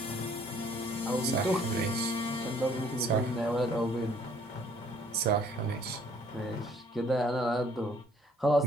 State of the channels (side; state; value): both; normal; correlation 0.60